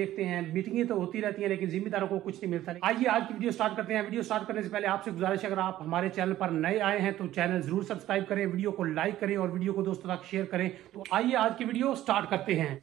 हैं। मीटिंगें तो होती रहती हैं लेकिन जिम्मेदारों को कुछ नहीं मिलता। आइए आज की वीडियो स्टार्ट करते हैं। वीडियो स्टार्ट करने से पहले आपसे गुजारिश है, अगर आप हमारे चैनल पर नए आए हैं तो चैनल जरूर सब्सक्राइब करें, वीडियो को लाइक करें और वीडियो को दोस्तों तक शेयर करें। तो आइए आज की वीडियो स्टार्ट करते हैं।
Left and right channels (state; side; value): quieter; left; 13.9 dB